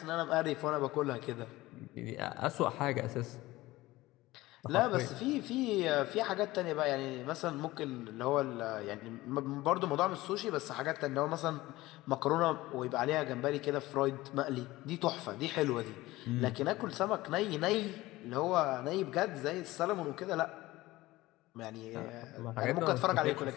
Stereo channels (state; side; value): quieter; right; 18.4 dB